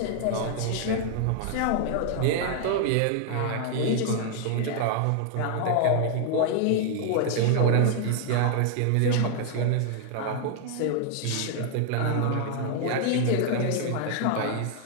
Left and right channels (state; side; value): different; both; correlation 0.00